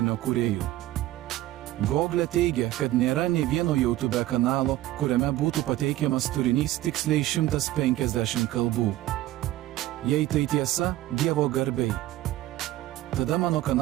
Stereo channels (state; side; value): quieter; left; 15.5 dB